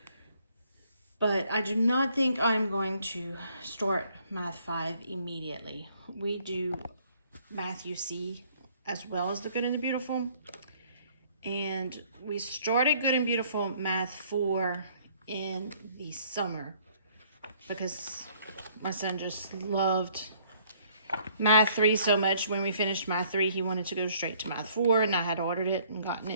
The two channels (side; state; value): both; inverted; correlation -0.62